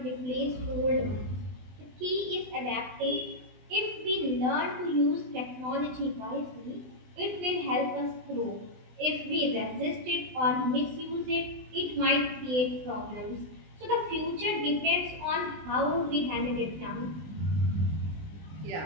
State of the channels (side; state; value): left; late; 20 ms